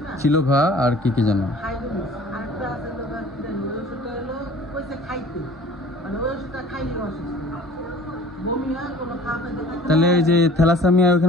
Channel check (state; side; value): normal; both; correlation 0.48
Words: ছিল ভা আর কি কি জানো, তাহলে এই যে থ্যালাসেমিয়া